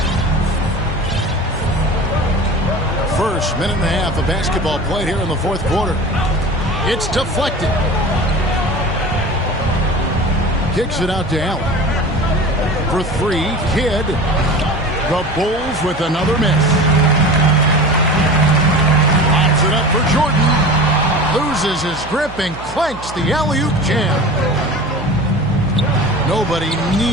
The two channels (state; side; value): noise; right; hum, 14 dB below the sound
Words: First minute and a half of basketball played here in the fourth quarter. It's deflected. Kicks it out to Allen. For 3, Kidd. The Bulls with another miss. Pops it up for Jordan. Loses his grip and clanks the alley-oop jam. Nobody